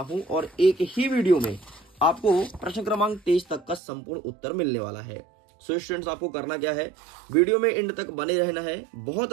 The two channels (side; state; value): left; drops out; at 3.8 s